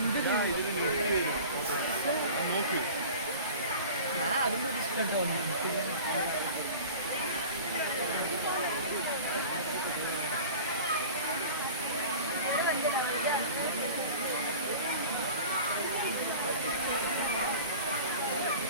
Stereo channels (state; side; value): inverted; both; correlation -0.38